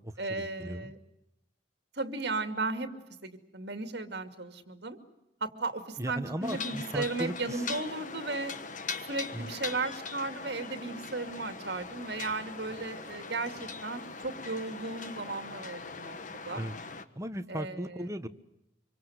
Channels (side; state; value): both; normal; correlation 0.04